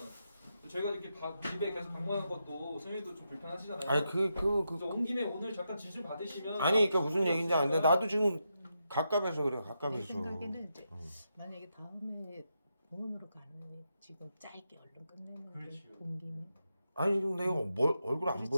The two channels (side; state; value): both; inverted; correlation -0.85